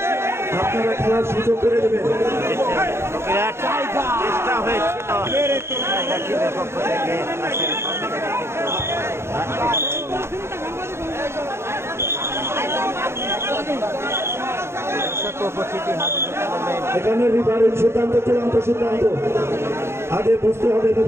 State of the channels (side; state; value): left; late; 0.12 ms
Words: আপনারা খেলার সুযোগ করে দেবেন চেষ্টা হয়েছিল পক্ষ থেকে এখানে রিফারির সিদ্ধান্ত চূড়ান্ত সিদ্ধান্ত আগে বুঝতে হবে